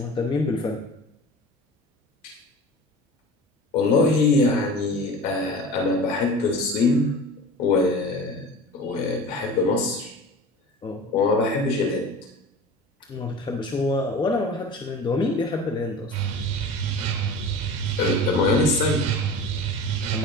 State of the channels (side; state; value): both; normal; correlation 0.36